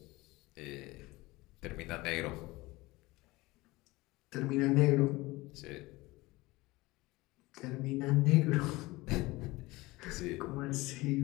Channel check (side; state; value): right; quieter; 21.1 dB